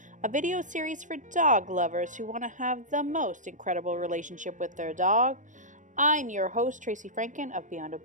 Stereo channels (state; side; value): late; left; 0.37 ms